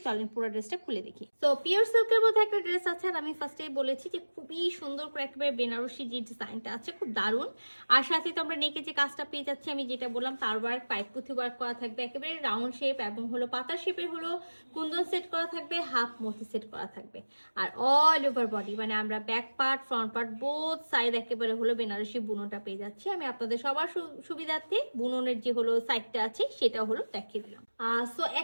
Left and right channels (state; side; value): inverted; both; correlation -1.00